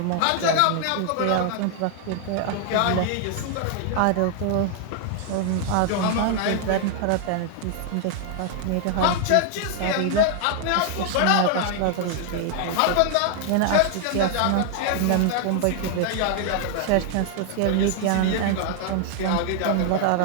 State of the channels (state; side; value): different; both; correlation 0.00